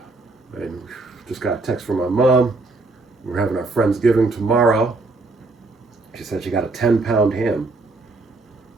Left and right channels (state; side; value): quieter; left; 3.3 dB